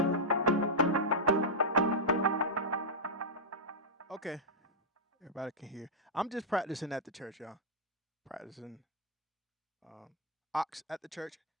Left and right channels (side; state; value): both; normal; correlation -0.08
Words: Okay, everybody can hear. I'm just practicing at the church, y'all. Practicing um, AUX at the church.